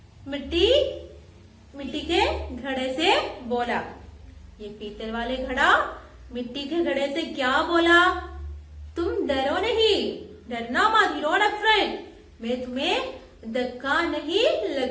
मिट्टी के घड़े से बोला। ये पीतल वाले घड़ा मिट्टी के घड़े से क्या बोला? तुम डरो नहीं, डरना मत, यू डोंट अफ्रेड, मैं तुम्हें धक्का नहीं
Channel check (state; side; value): identical; both; correlation 1.00